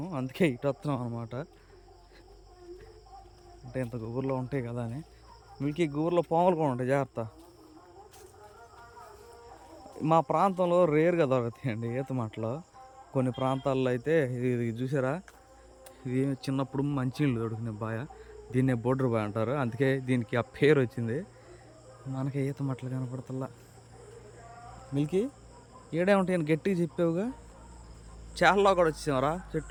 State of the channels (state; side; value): identical; both; correlation 1.00